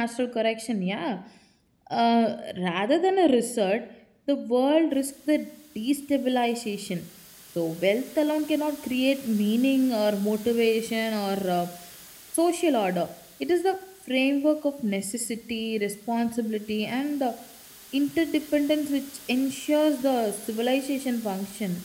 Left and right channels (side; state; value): both; identical; correlation 1.00